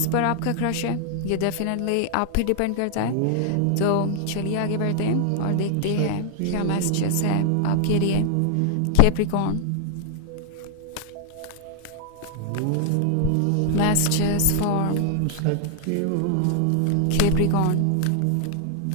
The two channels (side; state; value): both; different; correlation 0.00